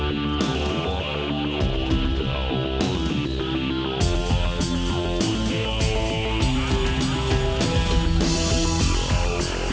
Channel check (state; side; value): identical; both; correlation 1.00